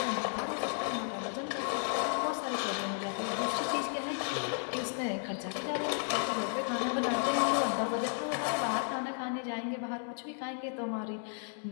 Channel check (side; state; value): right; silent; 55 dB below the other